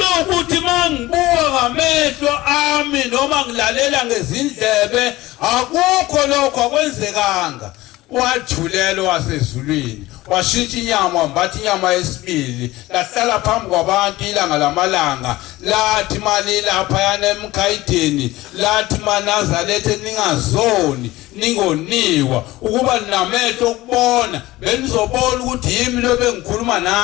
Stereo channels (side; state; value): right; quieter; 18.2 dB